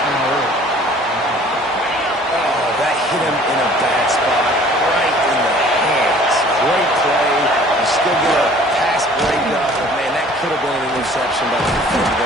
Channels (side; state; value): both; normal; correlation 0.52